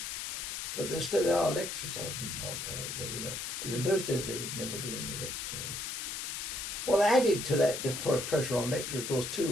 But there are lectures, I think, out there, But in those days, there would never be any lectures. Well, added to that pressure on lecture, of course, too,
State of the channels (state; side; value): noise; left; hiss, 4 dB below the sound